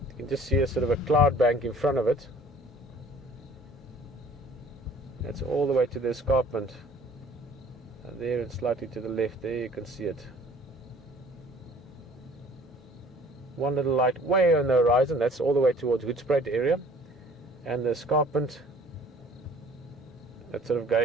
you can just see a sort of a cloud bank in front of it, That's all the way to the escarpment. And there and slightly to the left, there you can see it. One little light way on the horizon, that's all the way towards Hoedspruit area. And the escarpment, that's sort of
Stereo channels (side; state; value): both; normal; correlation 0.52